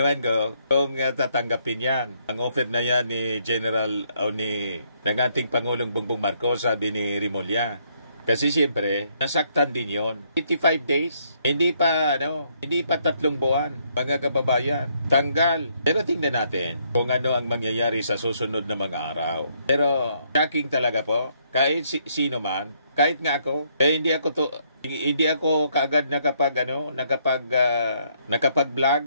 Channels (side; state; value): both; inverted; correlation -0.71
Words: ko kung tatanggapin yan. Ang offer na yan ni General o ng ating Pangulong Bongbong Marcos, sabi ni Rimulya. Kasi siyempre, nasaktan din yon. 85 days. Hindi pa 3 buwan, mga kababayan. Tanggal. Pero tingnan natin kung ano ang mangyayari sa susunod na mga araw. Pero shocking talaga po. Kahit sino man, kahit nga ako, hindi ako kaagad nakapag-vlog.